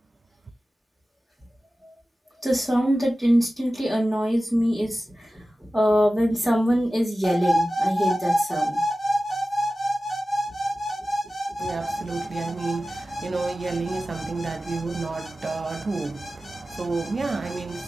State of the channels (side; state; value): both; normal; correlation 0.95